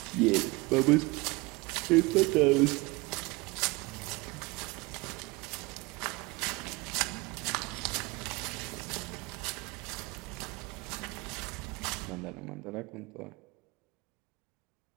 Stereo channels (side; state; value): left; quieter; 24.1 dB